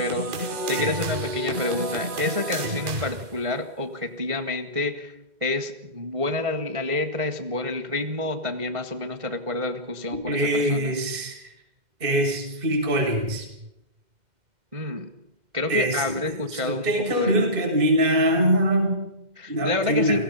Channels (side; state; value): left; late; 2.1 ms